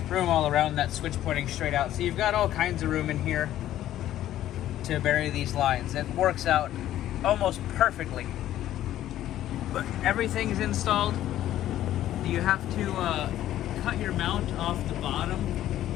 room all around that switch pointing straight out. So you've got all kinds of room in here to bury these lines. It works out almost perfectly. But everything's installed. You have to cut your mount off the bottom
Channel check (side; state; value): right; quieter; 12.9 dB